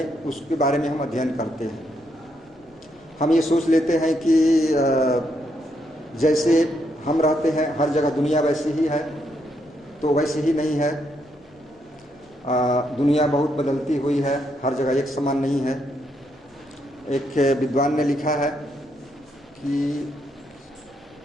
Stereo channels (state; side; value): normal; both; correlation 0.77